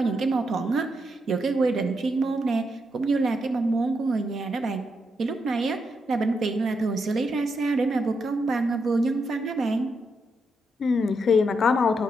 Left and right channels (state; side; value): normal; both; correlation 0.81